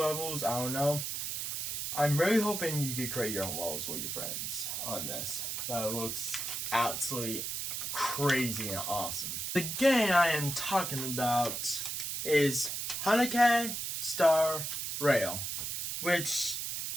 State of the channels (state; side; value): noise; right; hiss, 3 dB below the sound